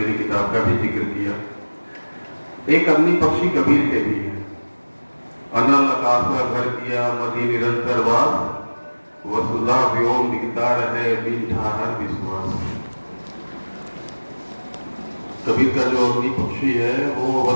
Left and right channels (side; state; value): both; inverted; correlation -1.00